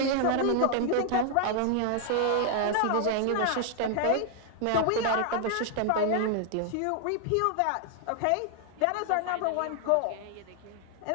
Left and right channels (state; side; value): different; both; correlation 0.00